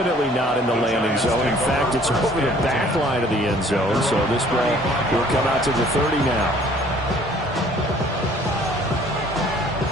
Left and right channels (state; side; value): normal; both; correlation 0.56